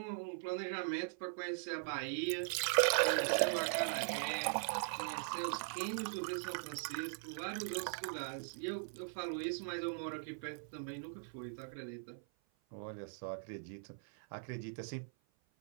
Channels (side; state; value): left; silent; 51 dB below the other